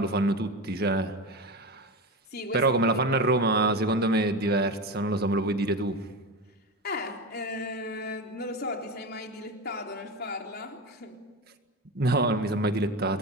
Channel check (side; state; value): both; normal; correlation 0.22